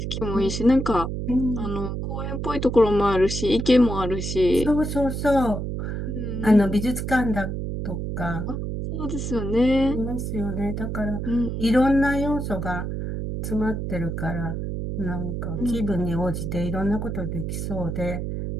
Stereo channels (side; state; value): right; noise; hum, 4 dB below the sound